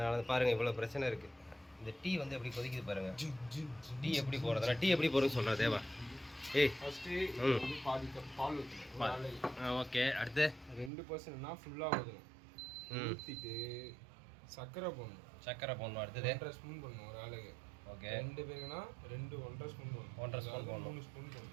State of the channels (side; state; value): left; drops out; at 10.9 s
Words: பாருங்க இவ்வளோ பிரச்சனை இருக்குது. இந்த டீ வந்து எப்படி கொதிக்குது பாருங்க. டீ எப்படி போடுறதுனா டீ எப்படி போடுறதுன்னு சொல்கிறேன் தேவா. ஏய், ஓகே. அடுத்து 2% ஃபுல்லாக ஊற்றிட்டு சர்க்கரை போடணும். அடுத்தது 1.5 ஸ்பூன் போடணும் ஒரு ஆளுக்கு. ஓகே. 2 பேருக்குன்னா 1.5 ஸ்பூன் போடணும். 1.5 ஸ்பூன் போடணும். 3 ஸ்பூன்